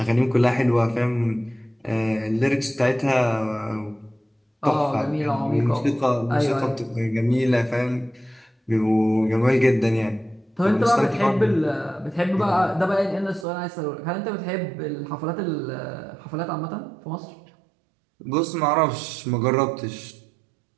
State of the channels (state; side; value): drops out; left; at 13.5 s